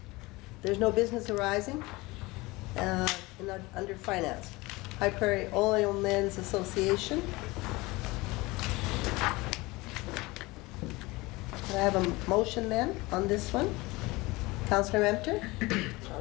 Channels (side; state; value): right; quieter; 22.2 dB